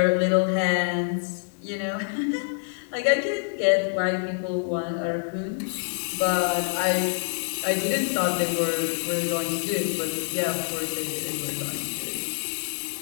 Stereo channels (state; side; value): silent; right; digital silence